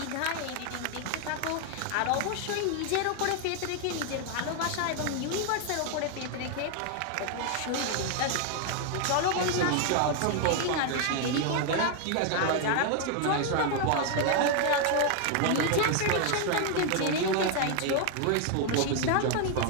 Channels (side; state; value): both; different; correlation 0.00